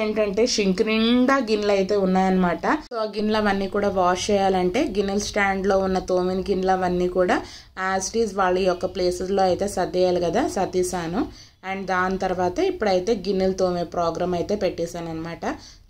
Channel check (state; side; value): identical; both; correlation 1.00